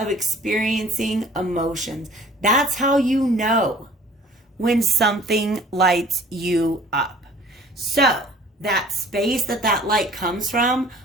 experiencing emotions. That's how you know when something lights you up. So that space that light comes from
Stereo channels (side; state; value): both; normal; correlation 0.50